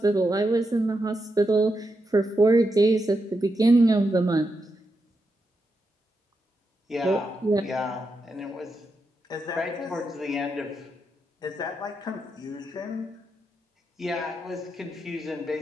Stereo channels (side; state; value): both; normal; correlation 0.85